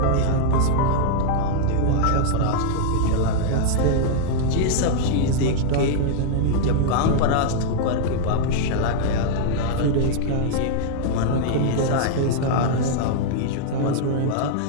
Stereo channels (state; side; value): different; both; correlation -0.01